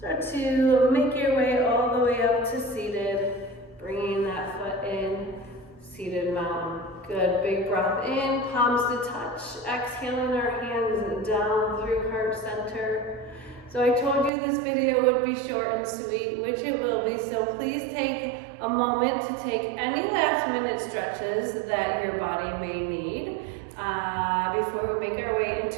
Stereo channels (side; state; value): left; drops out; at 14.3 s